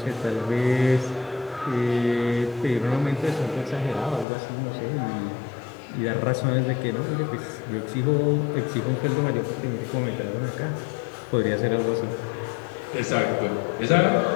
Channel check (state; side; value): drops out; right; at 4.2 s